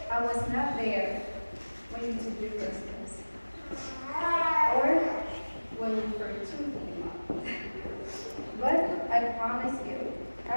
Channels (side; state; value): both; inverted; correlation -1.00